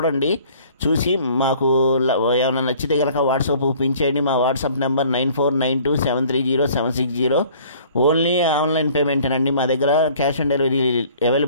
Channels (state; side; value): inverted; both; correlation -0.53